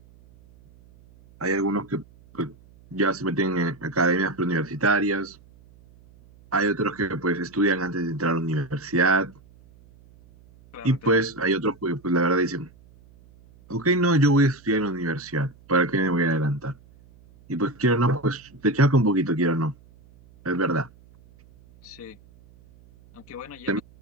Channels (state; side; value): noise; right; hum, 26 dB below the sound